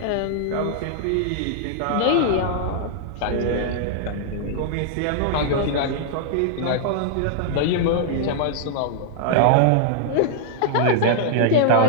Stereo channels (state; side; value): different; both; correlation -0.01